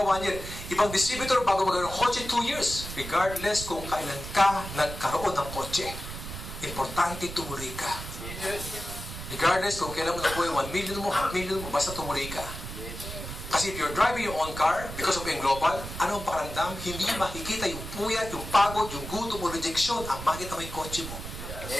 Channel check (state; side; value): noise; right; rumble, 9 dB below the sound